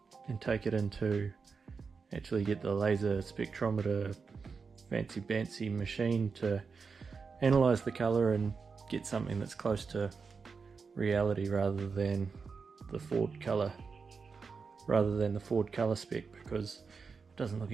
and take it into, actually get the laser spectrometer fancy machine to analyze the color and get something that's close to reality rather than the Ford color spec, because it doesn't look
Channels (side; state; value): left; quieter; 5.1 dB